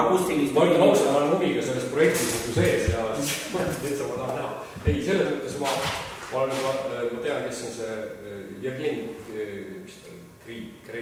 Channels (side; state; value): both; identical; correlation 1.00